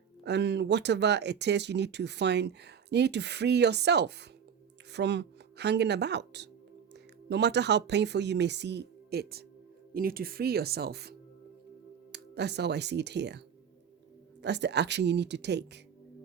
and whatever it is, you need to free yourself from hanging about. No matter how painful you may see it, you need to free yourself. That's how I see it here. That's the action you need to take.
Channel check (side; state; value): left; quieter; 7.5 dB